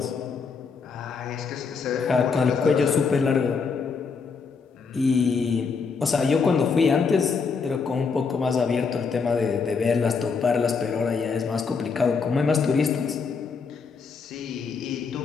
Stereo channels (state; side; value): quieter; right; 5.2 dB